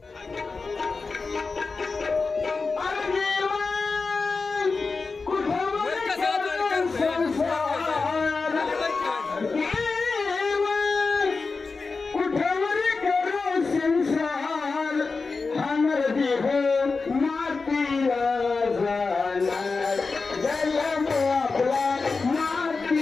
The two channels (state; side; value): quieter; right; 4.3 dB